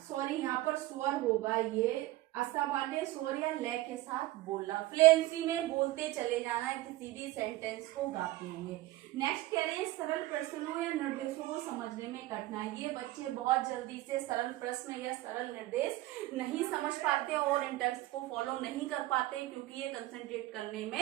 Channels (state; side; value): quieter; left; 17.5 dB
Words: सॉरी यहाँ पर स्वर होगा, ये असामान्य स्वर या लय के साथ बोलना, फ्लुएंसी में बोलते चले जाना है किसी भी सेंटेंस को गाते हुए। नेक्स्ट कह रहे हैं सरल प्रश्नों या निर्देशों को समझने में कठिनाई। ये बच्चे बहुत जल्दी से सरल प्रश्न या सरल निर्देश नहीं समझ पाते और इन टेक्स्ट को फॉलो नहीं कर पाते, क्योंकि ये कंसंट्रेट करने